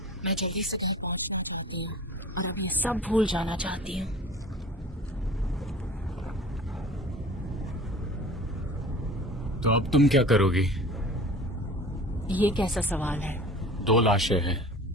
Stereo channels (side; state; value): both; normal; correlation 0.42